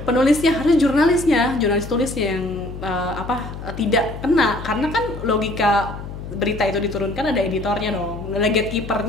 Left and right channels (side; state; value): left; noise; hum, 10 dB below the sound